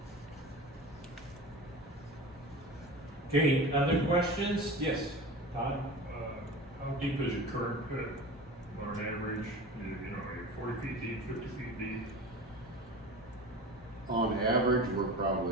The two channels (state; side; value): normal; both; correlation 0.33